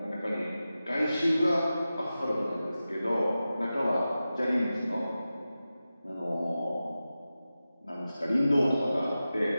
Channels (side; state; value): both; inverted; correlation -0.94